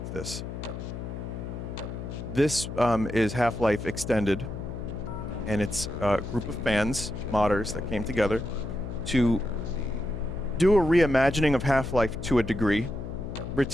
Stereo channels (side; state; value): left; noise; hum, 8 dB below the sound